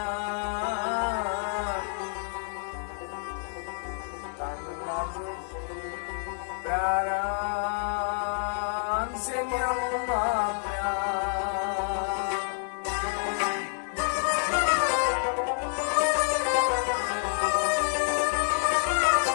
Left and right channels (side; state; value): right; silent; 59 dB below the other